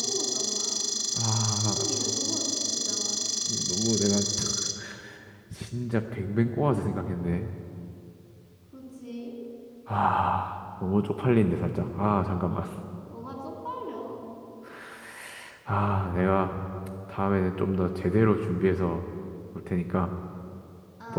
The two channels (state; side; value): identical; both; correlation 1.00